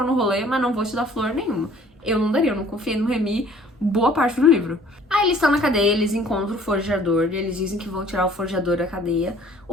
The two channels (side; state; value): both; normal; correlation 0.54